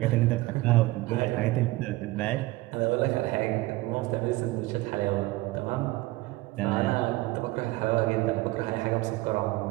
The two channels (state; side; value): quieter; left; 19.7 dB